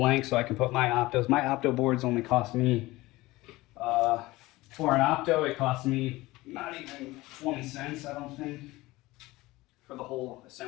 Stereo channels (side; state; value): right; quieter; 19.6 dB